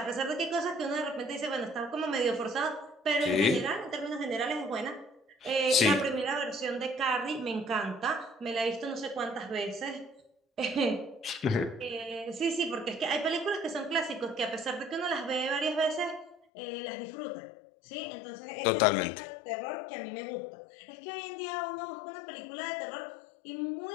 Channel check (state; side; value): drops out; right; at 16.4 s